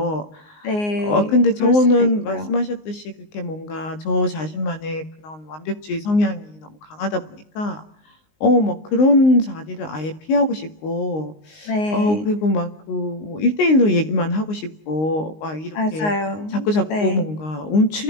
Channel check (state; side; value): late; right; 19 ms